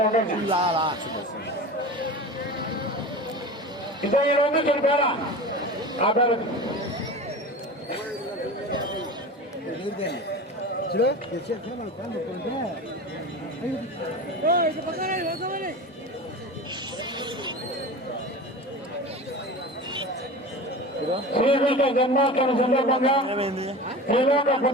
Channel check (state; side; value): normal; both; correlation 0.32